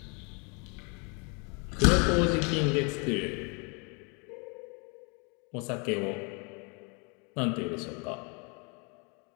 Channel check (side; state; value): right; quieter; 33.2 dB